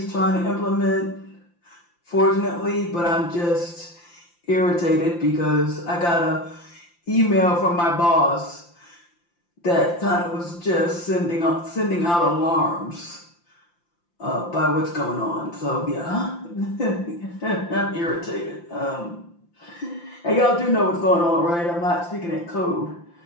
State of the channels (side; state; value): right; late; 5.8 ms